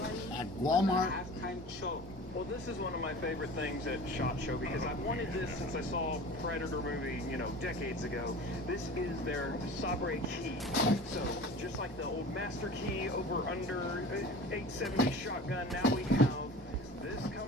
at Walmart halftime show. Well, this is one of my favorite things at SHOT Show because I've wanted this since I saw Predator movie, you know, decades ago. This is their Sabre key. So, just like the old Master Key over under 870 shotgun, now we have this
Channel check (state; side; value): normal; both; correlation 0.38